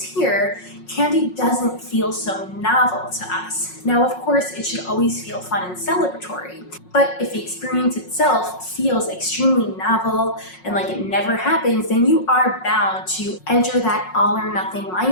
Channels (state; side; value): late; right; 5.5 ms